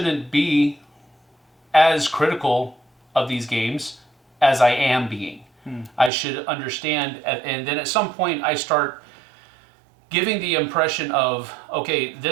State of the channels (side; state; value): left; drops out; at 6.1 s